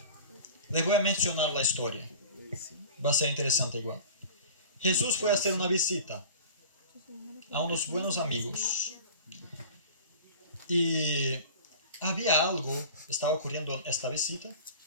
les voy a mencionar la historia. Va a ser interesante igual. Jesús fue a hacer una visita a unos buenos amigos. Y había algo, estaba ocurriendo en esta visita,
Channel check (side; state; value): both; inverted; correlation -0.40